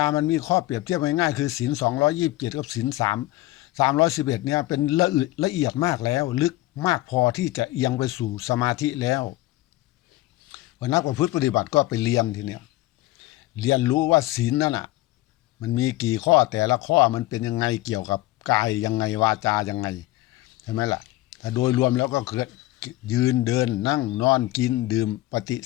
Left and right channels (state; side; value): quieter; right; 17.4 dB